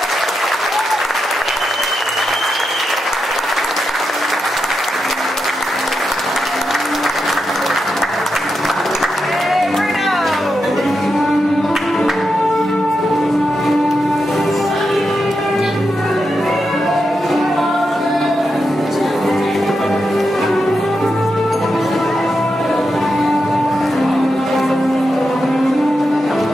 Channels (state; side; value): normal; both; correlation 0.87